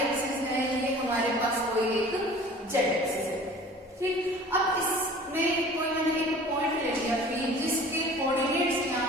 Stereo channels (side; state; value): both; normal; correlation 0.45